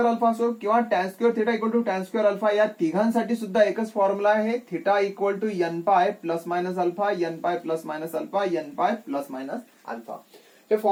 alpha असो किंवा tan square theta equal to tan square alpha, या तिघांसाठी सुद्धा एकच formula आहे. Theta equal to n pi plus minus alpha, n pi plus minus alpha, n pi plus minus alpha. हे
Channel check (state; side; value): identical; both; correlation 1.00